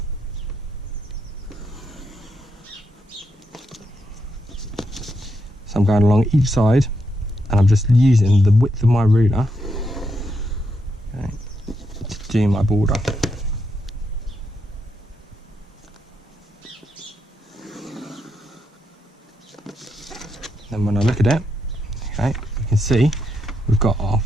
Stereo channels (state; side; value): normal; both; correlation 0.81